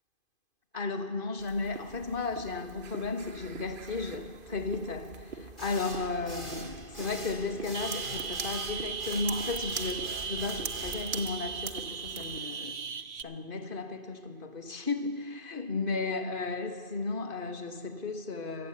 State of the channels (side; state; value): left; late; 2.5 ms